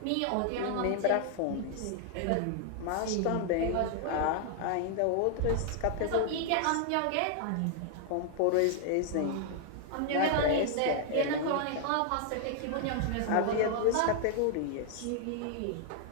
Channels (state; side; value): different; both; correlation 0.00